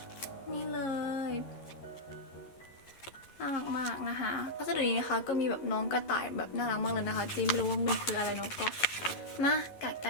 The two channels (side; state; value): right; late; 11 ms